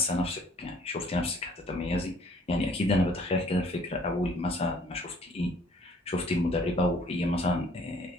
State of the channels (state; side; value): normal; both; correlation 0.58